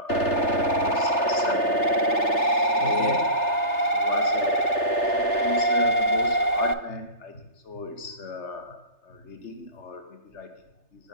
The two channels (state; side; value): late; right; 3.3 ms